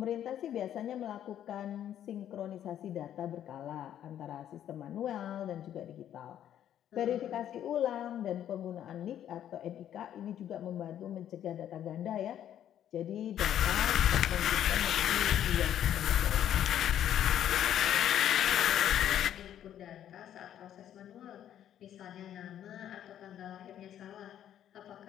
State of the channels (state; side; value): quieter; right; 10.7 dB